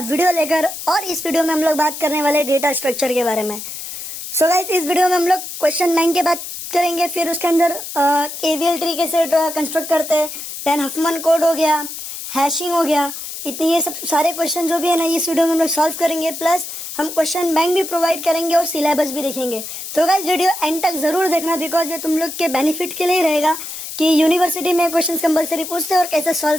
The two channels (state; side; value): noise; left; hiss, 9 dB below the sound